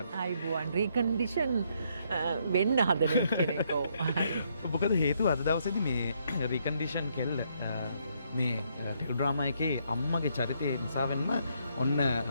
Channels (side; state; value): both; inverted; correlation -0.72